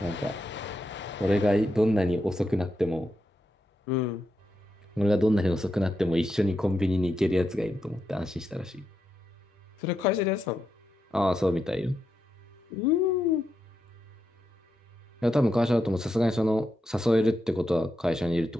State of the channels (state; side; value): normal; both; correlation 0.84